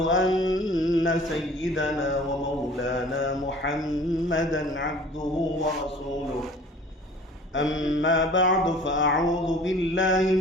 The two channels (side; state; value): both; normal; correlation 0.47